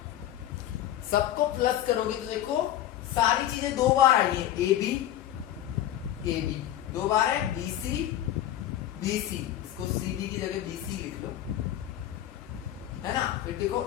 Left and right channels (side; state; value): right; quieter; 12.3 dB